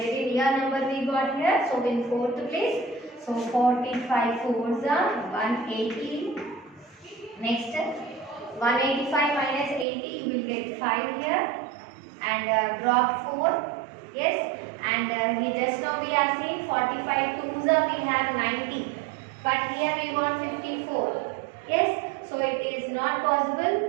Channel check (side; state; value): left; drops out; at 9.9 s